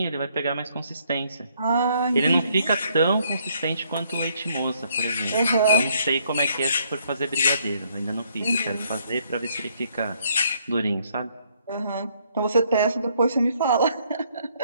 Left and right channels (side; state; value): both; inverted; correlation -0.68